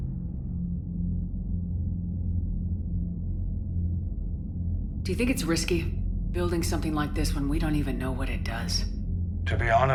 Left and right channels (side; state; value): both; identical; correlation 1.00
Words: Do you think it's risky, building something like this when we don't even know what it does? To be